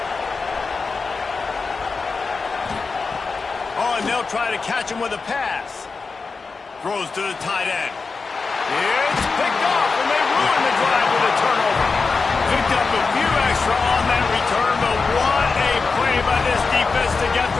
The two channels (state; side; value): quieter; right; 4.5 dB